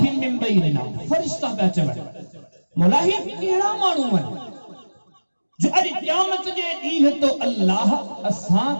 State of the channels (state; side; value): inverted; both; correlation -1.00